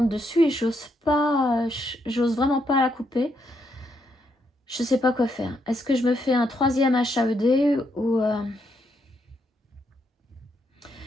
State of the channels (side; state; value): both; normal; correlation 0.77